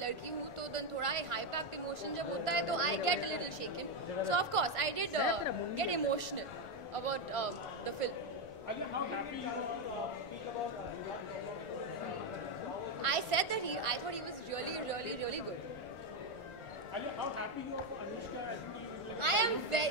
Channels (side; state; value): right; late; 1.4 ms